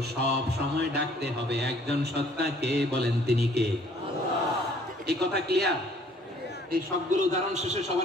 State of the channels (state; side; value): normal; both; correlation 0.58